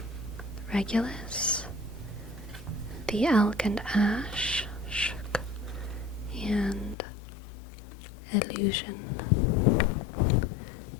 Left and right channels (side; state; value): right; drops out; at 7.0 s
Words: Regulus. The Elk and Ash. Shk. And Illusion.